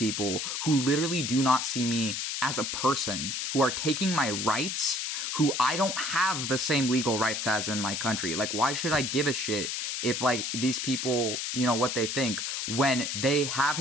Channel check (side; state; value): left; noise; hiss, 2 dB below the sound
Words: who literally do not see me as a person, who are taking my rights, who I don't have the same legal rights as in my country? Like, why should I give a shit if, like, these people, you know, what they think, when they have